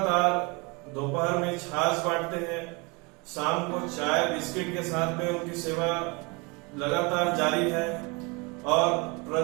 दोपहर में छाछ बांटते हैं, शाम को चाय बिस्किट के साथ में उनकी सेवा लगातार जारी है और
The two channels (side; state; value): left; quieter; 28.6 dB